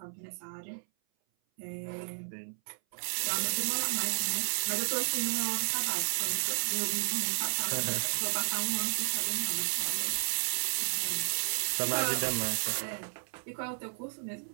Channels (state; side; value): silent; left; 56 dB below the other